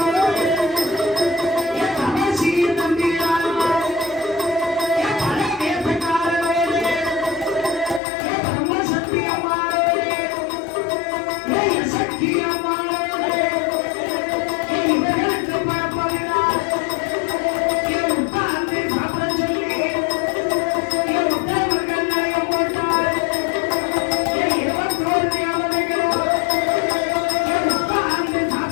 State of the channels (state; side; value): drops out; right; at 8.0 s